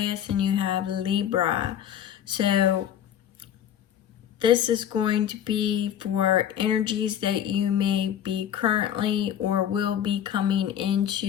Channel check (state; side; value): quieter; right; 9.9 dB